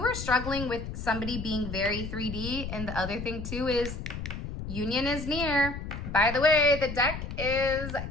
are struggling with somebody being very 3D, and the other thing too is union is near. By the way, the deck is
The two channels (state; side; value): noise; left; rumble, 7 dB below the sound